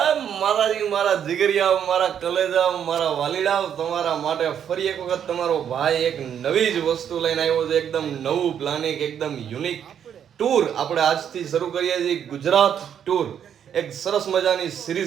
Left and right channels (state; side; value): quieter; left; 8.8 dB